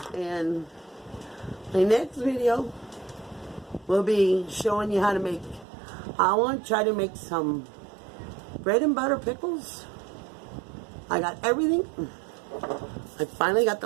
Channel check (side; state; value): left; drops out; at 5.7 s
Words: And my next video will be showing you how to make, I want to try to make some bread and butter pickles. I got everything. I finally got